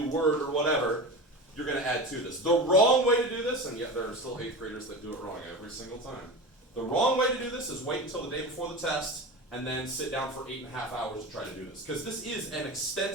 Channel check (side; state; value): both; normal; correlation 0.28